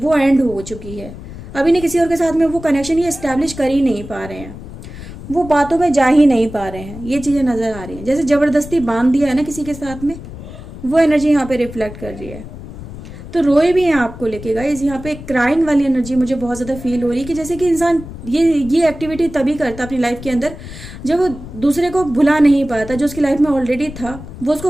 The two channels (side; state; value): left; noise; rumble, 13 dB below the sound